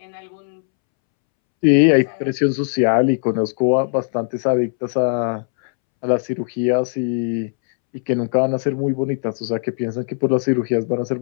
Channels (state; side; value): silent; right; 66 dB below the other